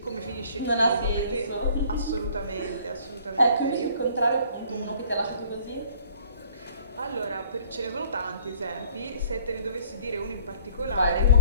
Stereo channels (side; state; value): both; inverted; correlation -0.55